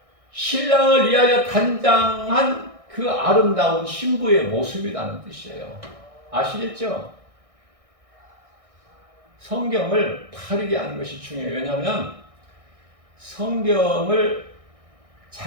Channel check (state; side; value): late; left; 1.6 ms